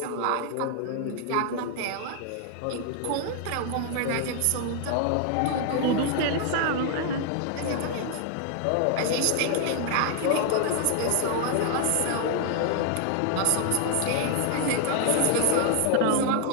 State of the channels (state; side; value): different; both; correlation 0.00